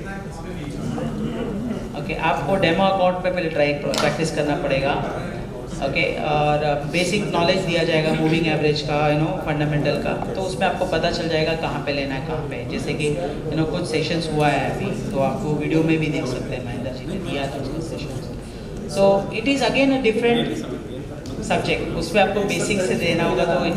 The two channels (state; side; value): identical; both; correlation 1.00